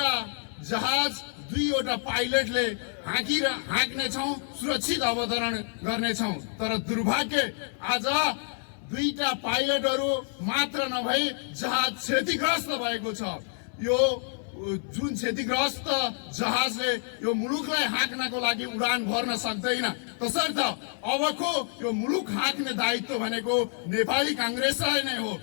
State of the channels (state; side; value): silent; right; 59 dB below the other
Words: जहाज दुईवटा पाइलटले हाँक्नेछौँ, सुरक्षित अवतरण गर्नेछौँ। तर दुर्भाग्य, आज दुईटा पाइलटहरू मात्र नभई जहाज क्षतिग्रस्त भएको छ। यो जुन क्षतिग्रस्त जहाजले यो मुलुकलाई हाँक्नको लागि उडान भर्न सक्दैन, तसर्थ अबको यो मुलुक हाँक्ने दायित्व भनेको नेपाली काङ्ग्रेसलाई नै हो।